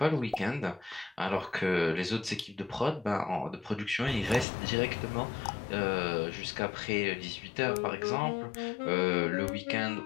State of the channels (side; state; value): right; drops out; at 4.5 s